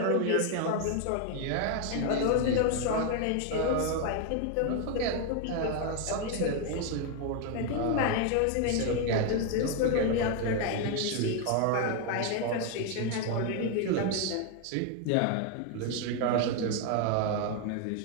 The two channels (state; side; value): different; both; correlation 0.01